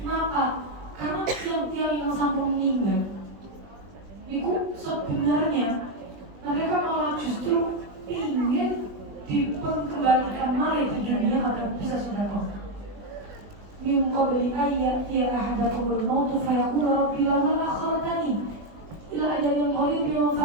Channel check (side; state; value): left; late; 20 ms